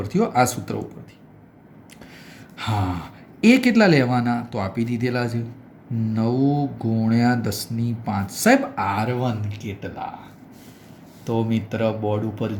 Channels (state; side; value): identical; both; correlation 1.00